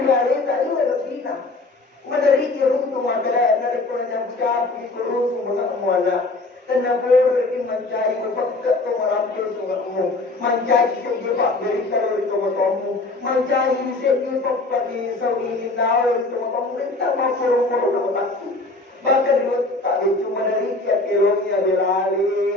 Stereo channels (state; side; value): quieter; right; 3.2 dB